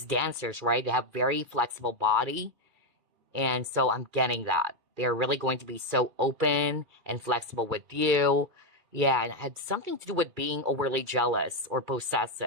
dancers, right, they have very flexible body. And so I'm getting that. They're really going to be so open and flexible with you. Yeah, and it had something to do with being overly jealous or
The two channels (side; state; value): left; late; 2.3 ms